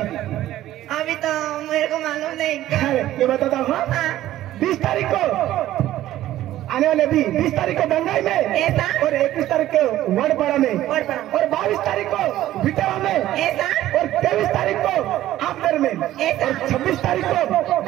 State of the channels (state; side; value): quieter; left; 13.9 dB